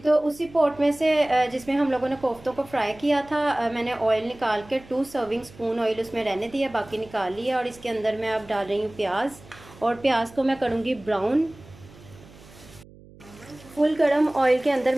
उसी पॉट में से जिसमें हम लोगों ने कोफ्तों को फ्राई किया था, मैंने ऑयल निकाल के 2 सर्विंग स्पून ऑयल उसमें रहने दिया, बाकी निकाल लिया। और इसके अंदर मैं अब डाल रही हूँ प्याज, और प्याज को मैं करूँगी ब्राउन। फुल गरम ऑयल के अंदर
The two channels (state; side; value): noise; right; hum, 22 dB below the sound